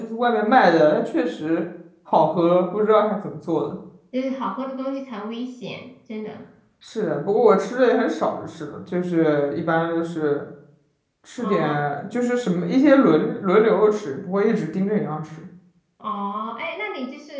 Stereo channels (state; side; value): identical; both; correlation 1.00